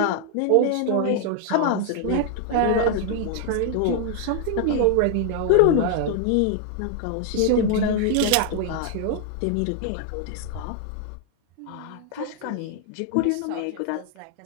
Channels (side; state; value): both; different; correlation 0.00